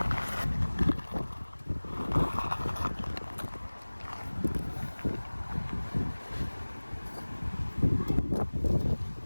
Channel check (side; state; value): both; inverted; correlation -1.00